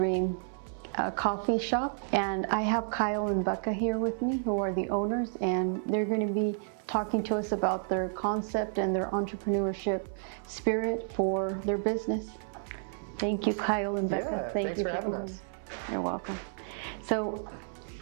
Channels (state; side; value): silent; left; 57 dB below the other